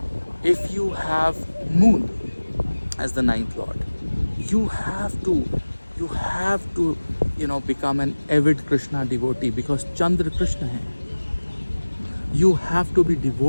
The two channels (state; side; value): inverted; both; correlation -1.00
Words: If you have Moon as the ninth lord, you have to become an avid Krishna devotee, because Chandra Krishna hai. You have to be